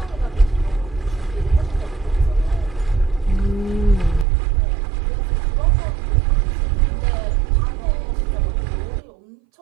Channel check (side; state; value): left; drops out; at 4.2 s